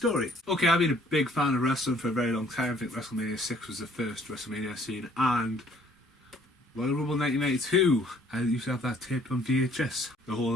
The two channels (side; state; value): both; normal; correlation 0.60